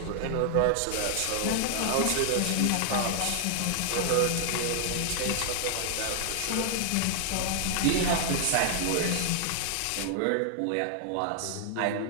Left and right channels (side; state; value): both; different; correlation 0.00